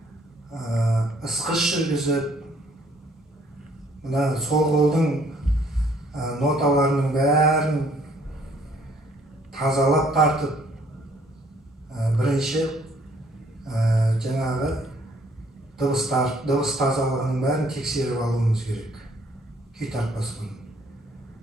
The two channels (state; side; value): normal; both; correlation 0.63